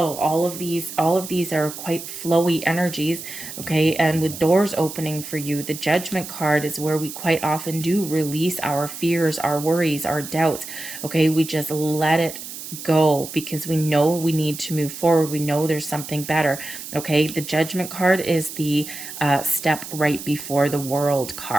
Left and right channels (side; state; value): right; noise; hiss, 11 dB below the sound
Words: All of these are quite flowy energies. Okay, and with doors opening for you, the Judgment card is where we quite often do release our fears, our worries, our doubts. Okay, we just let it go because we know we need to move forward. We know there's something better. Okay, the Judgment card is the step right before the World